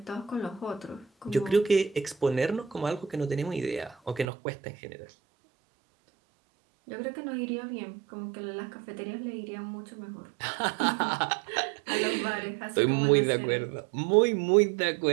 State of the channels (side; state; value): left; drops out; at 4.2 s